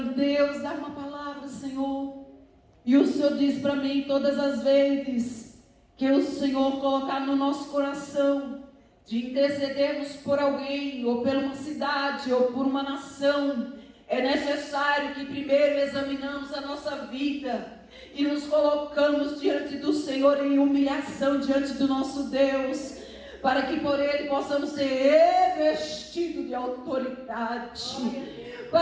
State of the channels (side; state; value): both; identical; correlation 1.00